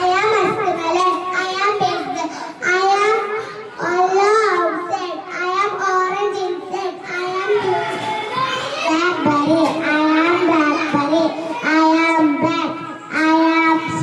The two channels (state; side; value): identical; both; correlation 1.00